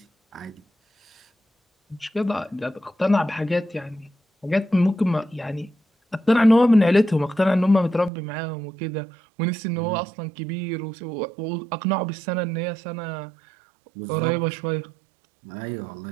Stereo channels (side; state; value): left; drops out; at 8.1 s